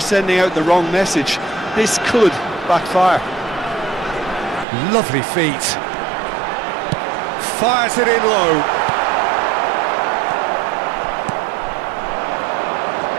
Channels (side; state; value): left; drops out; at 4.7 s